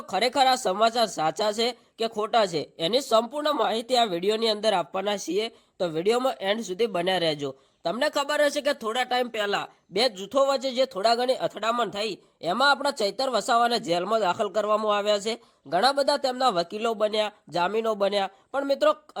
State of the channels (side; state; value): both; identical; correlation 1.00